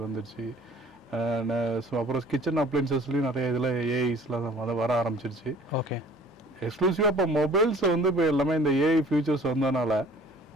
வந்துருச்சு. ஸோ அப்புறம் கிச்சன் அப்ளையன்சஸ்லேயும் நிறைய இதில் ஏஐஸ்லாம் வர ஆரம்பிச்சிருச்சு. ஓகே. எக்ஸ்க்ளூசிவாக இப்போ மொபைல்ஸ் வந்து இப்போ எல்லாமே இந்த ஏஐ ஃபியூச்சர்ஸ் வந்ததுனால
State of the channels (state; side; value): normal; both; correlation 0.51